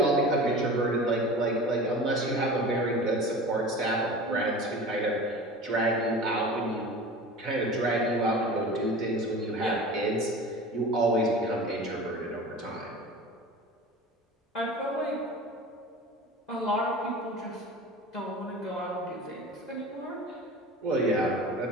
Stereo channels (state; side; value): normal; both; correlation 0.36